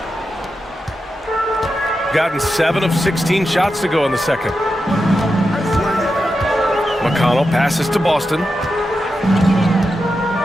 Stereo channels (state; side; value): normal; both; correlation 0.89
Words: Gotten 7 of 16 shots to go in the second. McConnell passes to Boston.